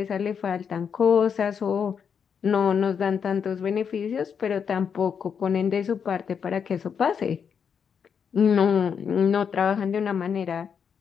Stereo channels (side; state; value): right; quieter; 7.0 dB